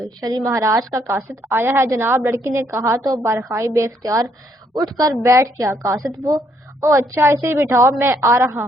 شری مہاراج کا قاصد آیا ہے جناب، لڑکی نے کہا تو بارخائی بے اختیار اٹھ کر بیٹھ گیا۔ قاصد وہ؟ او اچھا، اسے بٹھاؤ، میں آ رہا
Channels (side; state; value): both; normal; correlation 0.70